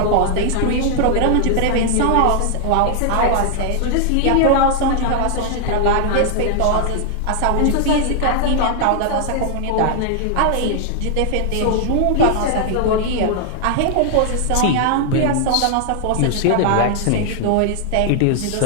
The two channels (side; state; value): both; different; correlation 0.00